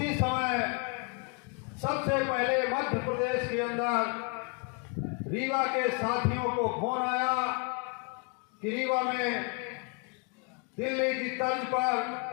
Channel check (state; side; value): quieter; right; 32.8 dB